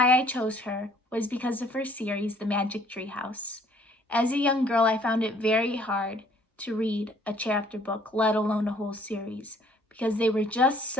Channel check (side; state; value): both; normal; correlation 0.59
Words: I chose her was because of her series, The Magic Tree House. As a young girl, I found it very hard to read a chapter book, let alone a whole series, because they were just